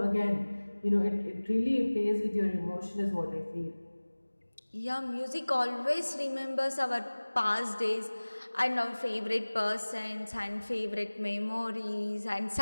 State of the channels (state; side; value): inverted; both; correlation -1.00